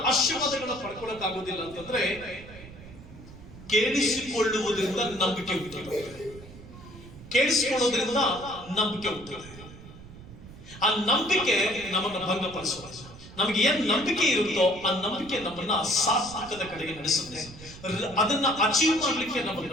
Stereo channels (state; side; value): noise; right; rumble, 17 dB below the sound